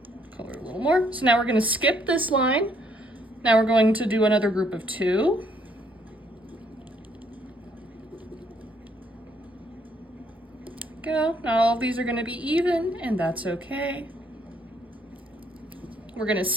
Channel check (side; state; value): both; normal; correlation 0.68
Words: Color a little more. So now we're gonna skip this line. Now we're going to do another group of 2. Go. Not all of these are gonna be even, and that's okay. We're gonna